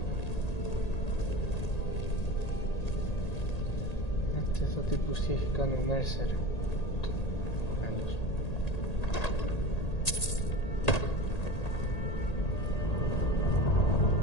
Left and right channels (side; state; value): right; late; 1.8 ms